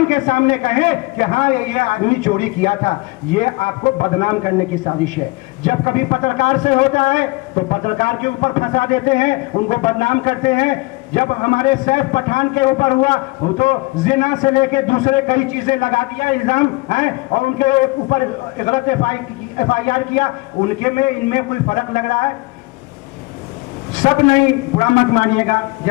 के सामने कहे कि हाँ ये आदमी चोरी किया था। ये आपको बदनाम करने की साजिश है। जब कभी पत्रकार से होता है तो पत्रकार के ऊपर फंसा देते हैं, उनको बदनाम करते हैं। जब हमारे सैफ पठान के ऊपर हुआ तो जिना से लेके दूसरे कई चीजें लगा दिया इल्जाम है, और उनके ऊपर गलत FIR किया, उनके में इनमें कोई फर्क लग रहा है? सब नहीं, बुरा मत मानिएगा,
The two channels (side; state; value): right; quieter; 23.6 dB